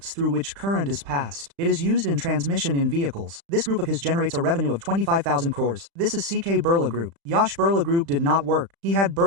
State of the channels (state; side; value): late; left; 35 ms